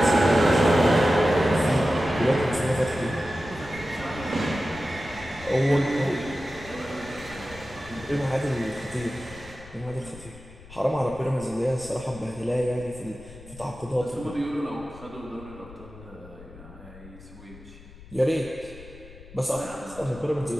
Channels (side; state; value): left; noise; rumble, 19 dB below the sound